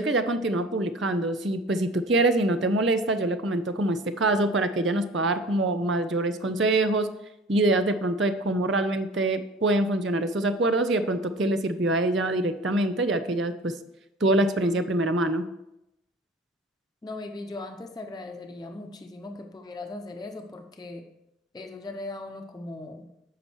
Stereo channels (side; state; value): both; normal; correlation 0.43